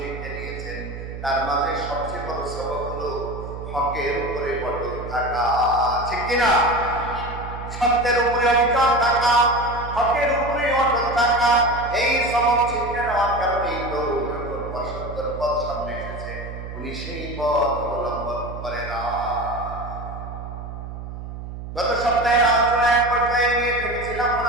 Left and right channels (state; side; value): noise; right; hum, 9 dB below the sound